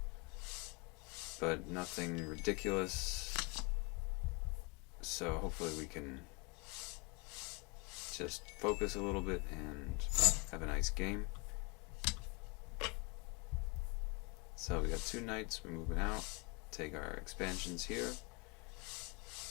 but nothing ridiculous. So hopefully we can just focus a little bit and have a nice game. So we got 2 knights, we're moving out. Take our expansions here.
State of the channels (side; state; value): right; quieter; 29.2 dB